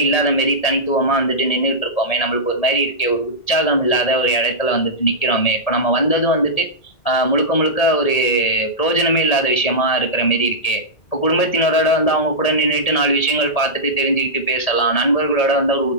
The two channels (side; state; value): right; late; 1.8 ms